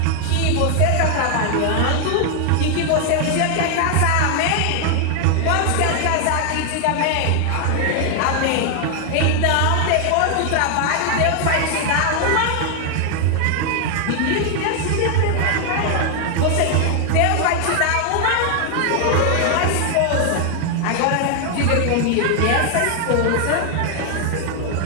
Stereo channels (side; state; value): both; different; correlation 0.00